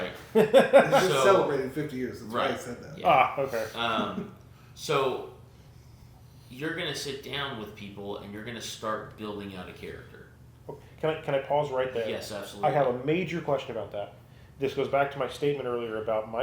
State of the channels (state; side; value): identical; both; correlation 1.00